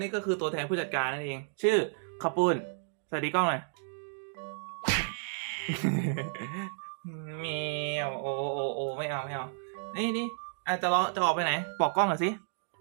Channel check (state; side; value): silent; left; digital silence